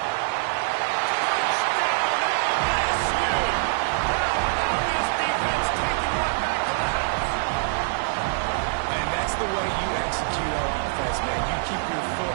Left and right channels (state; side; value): silent; left; 62 dB below the other